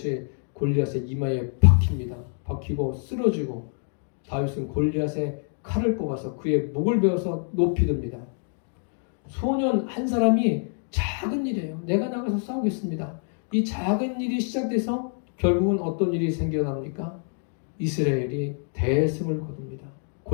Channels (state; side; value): silent; right; 56 dB below the other